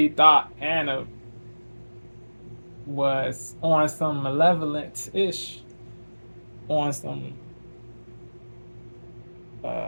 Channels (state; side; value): inverted; both; correlation -1.00